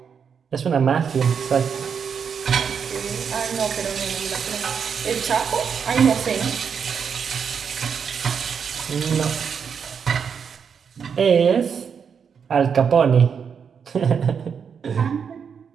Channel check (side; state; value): left; quieter; 6.8 dB